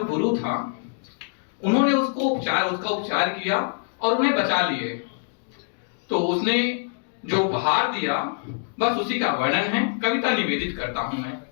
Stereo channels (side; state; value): right; silent; digital silence